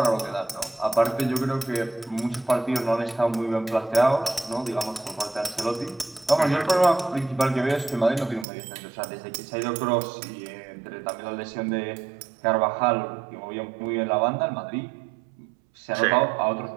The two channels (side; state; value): left; drops out; at 8.5 s